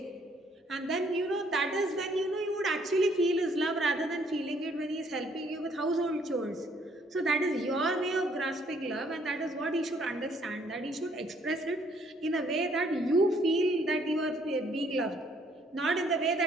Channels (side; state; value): both; normal; correlation 0.65